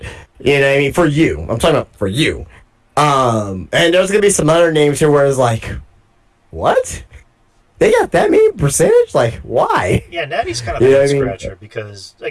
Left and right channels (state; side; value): identical; both; correlation 1.00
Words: You know what I mean? For you, I'm talking about for you. And there's gonna be some other names here where it's like, what? They got that many percentage? Like, why? yeah, Natty's kind of You know a what I mean? scratcher because